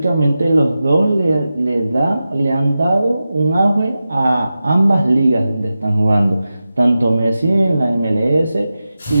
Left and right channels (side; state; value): both; inverted; correlation -0.93